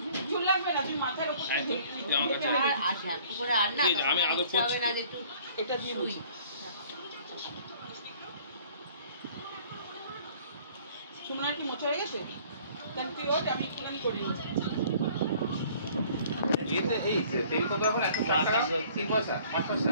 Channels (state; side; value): inverted; both; correlation -0.54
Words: চুল লাগবে না, তুমি মাথার উপর আর শ্যাম্পু করে আর না, আমি আদর করছি না যে একটু এটা দিয়ে বুঝি। সুমনা কি মোছা হয়ে গেছে? তাহলে তুই ওঠ, আমি একটুখানি করে নিই। এই তেল কত এখন? 100 টাকা 3 পয়সা 5 পয়সা